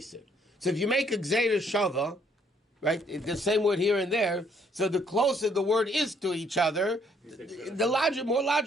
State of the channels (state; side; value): normal; both; correlation 0.66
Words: So if you make a gzeira shava, right, the same word here and there, so the closer the word is to each other, more